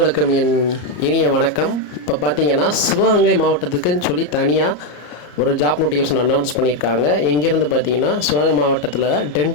என் இனிய வணக்கம். இப்போ பார்த்தீங்கன்னா சிவகங்கை மாவட்டத்துக்குன்னு சொல்லி தனியாக ஒரு ஜாப் நோட்டிஃபிகேஷன் அனௌன்ஸ் பண்ணியிருக்காங்க. எங்கேருந்து பார்த்தீங்கன்னா சிவகங்கை மாவட்டத்தில்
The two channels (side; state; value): right; late; 34 ms